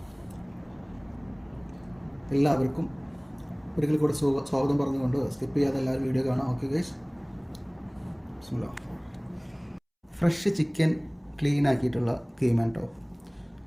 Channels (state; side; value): identical; both; correlation 1.00